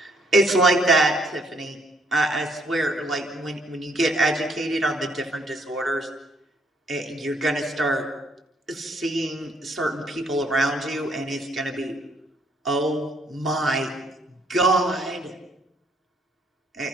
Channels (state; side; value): normal; both; correlation 0.68